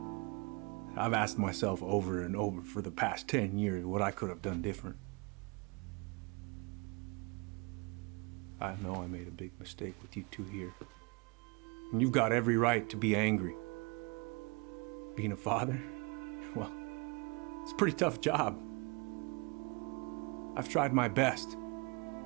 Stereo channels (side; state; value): left; quieter; 30.1 dB